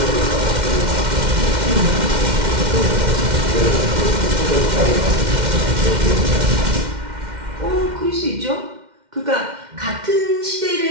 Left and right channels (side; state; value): left; late; 2.1 ms